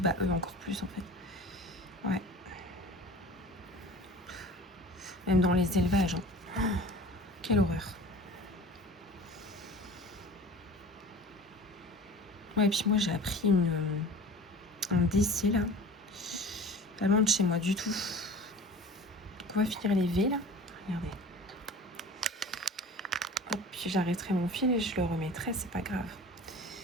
eux encore plus en fait. Ouais. Même dans les élevages. Hein. Oh, quelle horreur. Ouais, et puis moi j'ai appris un décès là. Pas loin de chez moi du tout. Donc on va finir les V là. Regardez. Hop, puis j'arrêterai mon fil et je le remettrai, c'est pas grave.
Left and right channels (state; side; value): normal; both; correlation 0.39